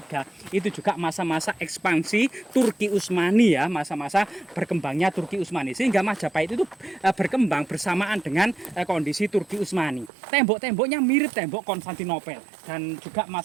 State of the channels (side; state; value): left; drops out; at 10.1 s